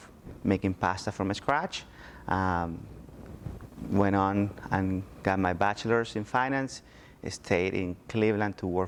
making pasta from scratch. Went on and got my bachelor's in finance. Stayed in Cleveland to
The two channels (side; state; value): both; identical; correlation 1.00